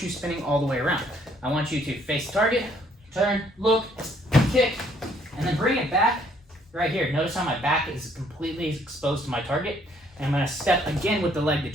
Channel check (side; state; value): both; normal; correlation 0.65